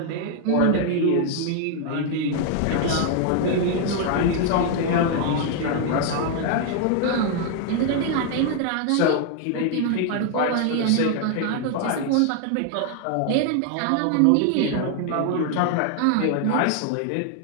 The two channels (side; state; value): both; different; correlation 0.00